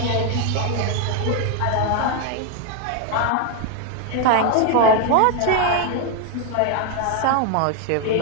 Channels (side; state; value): both; different; correlation 0.01